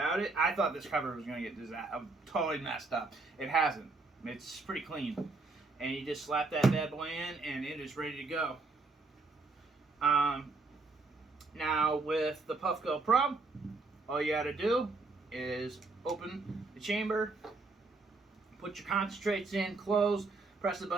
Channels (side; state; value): left; quieter; 3.7 dB